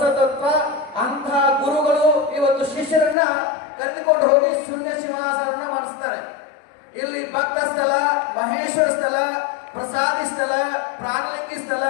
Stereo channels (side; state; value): right; drops out; at 3.2 s